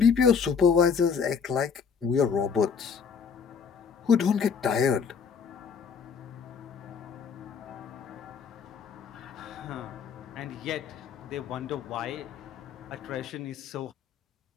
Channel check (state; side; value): quieter; right; 6.3 dB